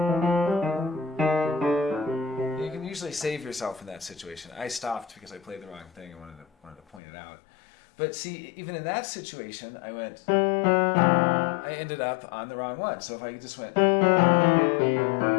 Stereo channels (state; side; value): drops out; right; at 7.0 s